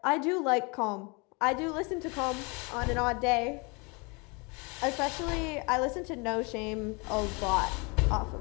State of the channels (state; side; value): quieter; right; 29.9 dB